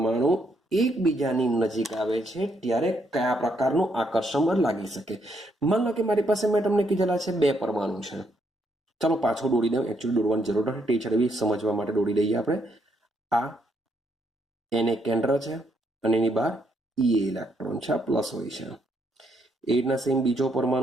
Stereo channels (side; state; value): both; normal; correlation 0.75